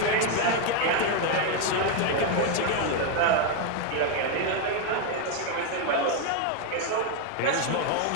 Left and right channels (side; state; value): both; different; correlation 0.01